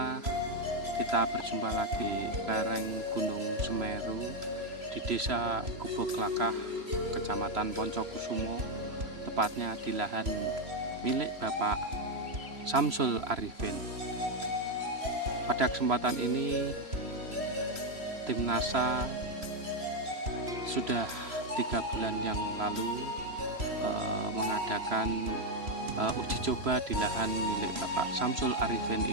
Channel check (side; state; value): left; late; 3.0 ms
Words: kita berjumpa lagi lereng Gunung Semeru di Desa Gubuk-Lakah, Kecamatan Poncokusumo, tepatnya di lahan milik Bapak Samsul Arifin. Pada kesempatan ini, tim NASA sudah 3 bulan yang lalu mengadakan uji coba di lahan milik Bapak Samsul Arifin